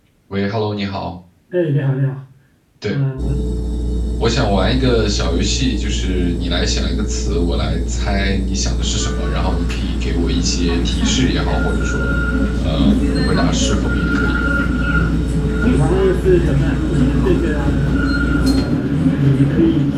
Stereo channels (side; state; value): both; identical; correlation 1.00